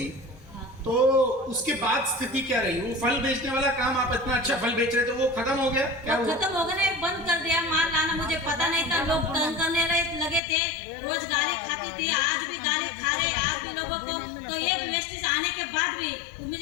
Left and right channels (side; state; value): right; drops out; at 10.4 s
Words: तो उसके बाद स्थिति क्या रही? वो फल बेचने वाला काम, आप इतना अच्छा फल बेच रहे थे, वो खत्म हो गया क्या? वो हुआ? खत्म हो गया, बंद कर दिया। माल लाना मुझे पता नहीं था, लोग तंग करने लगे थे, रोज गाली खाती थी, आज भी गाली खा रहे आज भी लोगों को। तो ये वेस्टेज आने के बाद भी